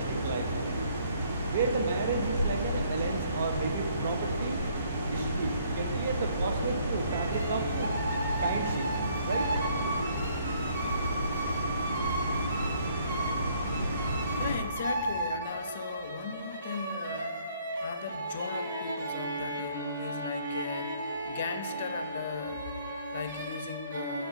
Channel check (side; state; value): both; inverted; correlation -0.63